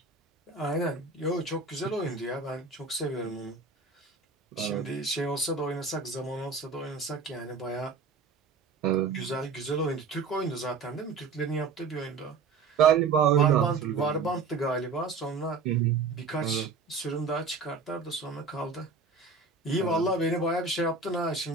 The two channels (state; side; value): quieter; left; 4.6 dB